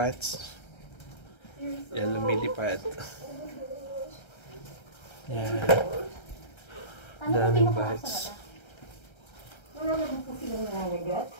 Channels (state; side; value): late; right; 1.3 ms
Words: yan lumilipad. Yan. Daming bats. Wala naman po silang nangangagat.